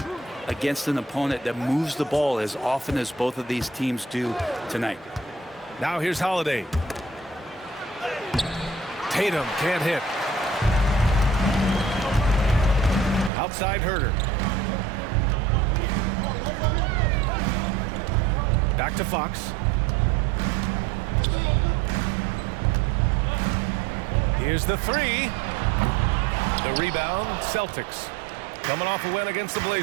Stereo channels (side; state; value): left; drops out; at 13.3 s